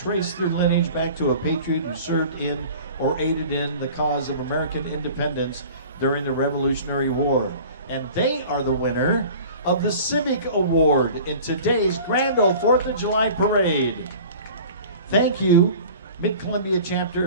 their lineage back to a patriot who served in or aided in the cause of American independence during the Revolutionary War. And they are the winner of the Civic Award in today's Grand Ole 4th of July Parade. Thank you, Mid-Columbia chapter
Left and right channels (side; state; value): both; inverted; correlation -0.43